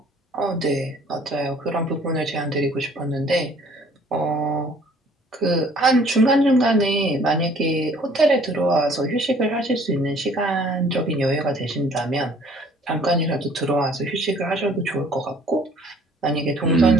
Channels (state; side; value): normal; both; correlation 0.56